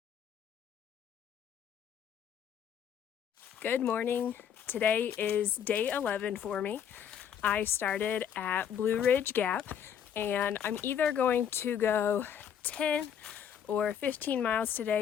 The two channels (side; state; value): right; quieter; 8.6 dB